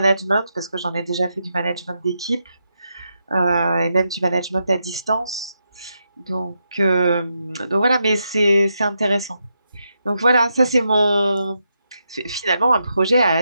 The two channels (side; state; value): both; inverted; correlation -0.84